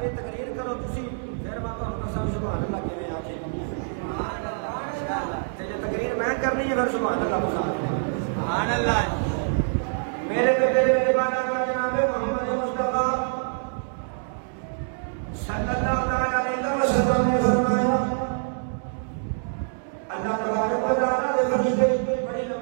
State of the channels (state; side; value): silent; left; digital silence